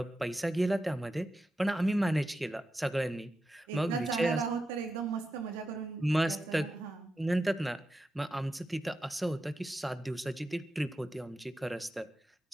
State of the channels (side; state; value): both; normal; correlation 0.89